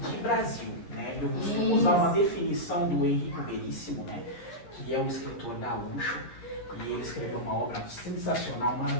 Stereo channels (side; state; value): right; late; 12 ms